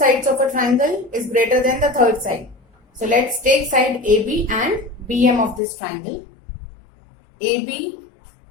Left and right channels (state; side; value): drops out; right; at 5.6 s